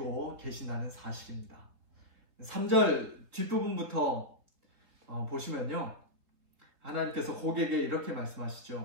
계신다는 사실입니다. 3절 뒷부분부터 보시면요. 하나님께서 곡에게 이렇게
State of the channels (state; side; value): late; left; 3.9 ms